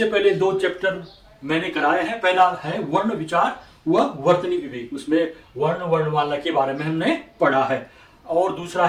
पहले दो चैप्टर मैंने कराए हैं। पहला है वर्ण विचार व वर्तनी विवेक, उसमें वर्ण वर्णमाला के बारे में हमने पढ़ा है। और दूसरा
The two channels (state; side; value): identical; both; correlation 1.00